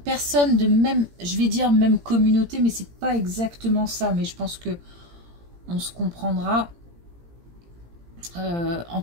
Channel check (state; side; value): late; left; 17 ms